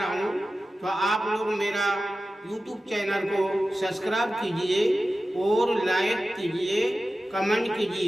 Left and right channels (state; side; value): normal; both; correlation 0.94